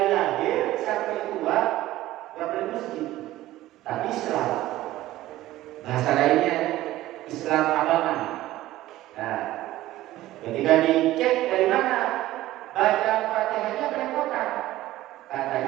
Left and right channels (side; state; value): left; quieter; 15.7 dB